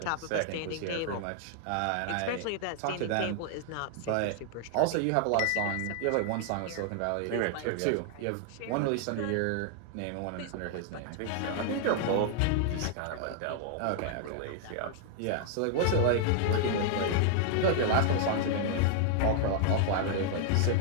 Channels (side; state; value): both; different; correlation 0.00